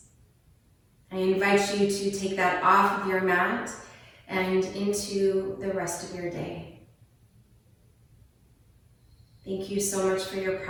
I invite you to take that off of your mat and into the rest of your day. Thank you so much for your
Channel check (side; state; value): both; identical; correlation 1.00